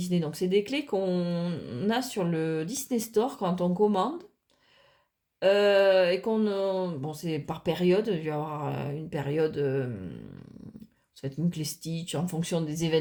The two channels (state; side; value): identical; both; correlation 1.00